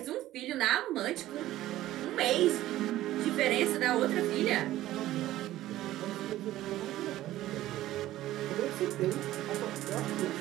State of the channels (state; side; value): quieter; left; 14.8 dB